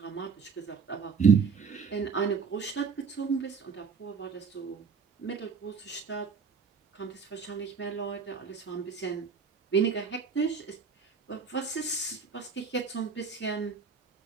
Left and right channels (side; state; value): left; quieter; 5.6 dB